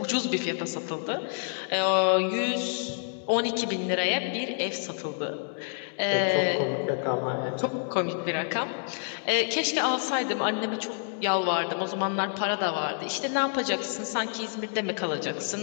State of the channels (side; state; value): right; silent; digital silence